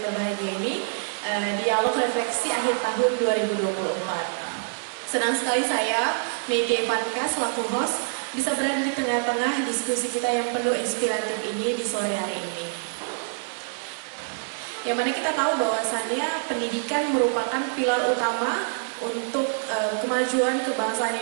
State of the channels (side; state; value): left; silent; digital silence